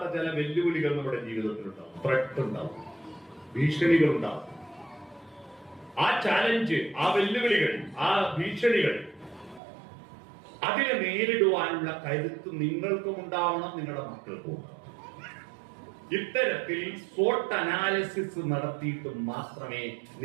ചില വെല്ലുവിളികൾ നമ്മുടെ ജീവിതത്തിലുണ്ടാവും. ത്രെട്ട് ഉണ്ടാവും, ഭീഷണികൾ ഉണ്ടാവും. ആ ചാലഞ്ച്, ആ വെല്ലുവിളികൾ, ആ ഭീഷണികൾ, അതിനെ നേരിടുവാനുള്ള കരുത്ത് നിങ്ങൾക്കും ഉണ്ടാവണം, നിങ്ങളുടെ മക്കൾക്കും ഉണ്ടാവണം. ഇത്തരത്തിൽ SWOT അനാലിസിസ് നടത്തിയിട്ട് മാത്രമേ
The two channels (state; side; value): drops out; left; at 9.6 s